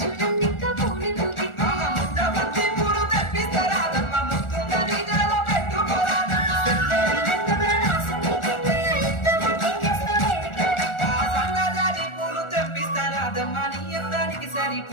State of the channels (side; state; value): right; late; 1.4 ms